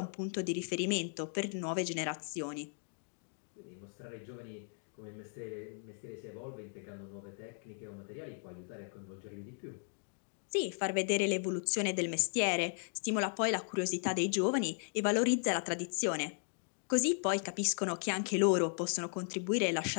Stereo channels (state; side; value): silent; right; 53 dB below the other